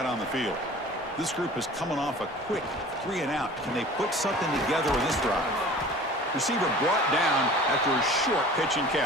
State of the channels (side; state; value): both; normal; correlation 0.43